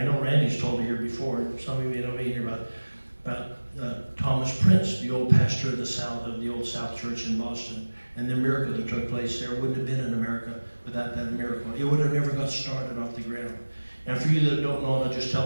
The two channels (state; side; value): inverted; both; correlation -1.00